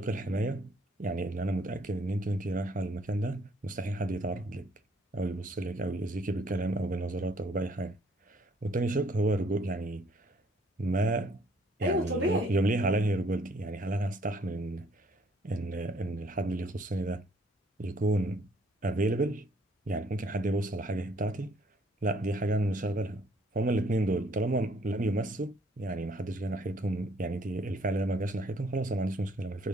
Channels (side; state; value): both; normal; correlation 0.63